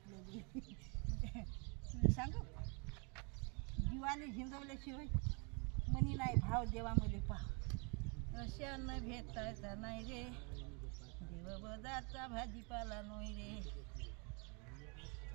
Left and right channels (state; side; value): quieter; left; 35.0 dB